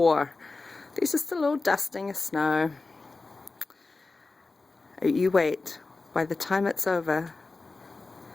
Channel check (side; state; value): right; quieter; 3.6 dB